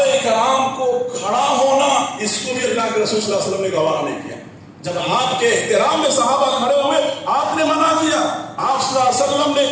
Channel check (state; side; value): identical; both; correlation 1.00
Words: کرام کو کھڑا ہونا، اس کو بھی اللہ کے رسول صلی اللہ علیہ وسلم نے گوارا نہیں کیا. جب آپ کے احترام میں صحابہ کھڑے ہوئے آپ نے منع کیا. آپ صلی اللہ علیہ وسلم